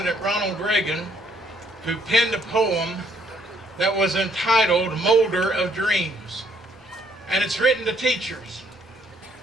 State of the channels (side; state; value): both; normal; correlation 0.67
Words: Ronald Reagan, who penned a poem that was entitled Molder of Dreams. And it's written to teachers.